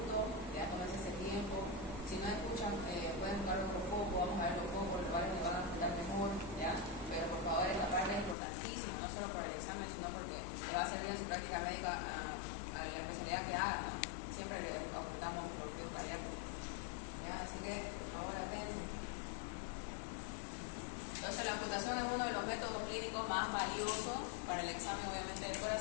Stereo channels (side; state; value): right; drops out; at 8.3 s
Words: ya tomarse ese tiempo. Si no escuchan, pueden buscar otro foco, vamos a ver los focos, los cuales les van a explicar mejor, ¿ya? Pero por favor, esta parte es importantísima, no solo por el examen, sino porque le va a servir en su práctica médica a la especialidad que haga, ¿no? Siempre le ocultamos los bloqueos cardíacos, ¿ya? Así que, por favor, atención. Entonces, la ocultación es uno de los métodos clínicos más valiosos para el examen, obviamente, del